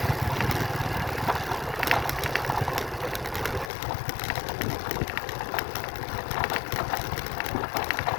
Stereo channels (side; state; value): right; drops out; at 3.7 s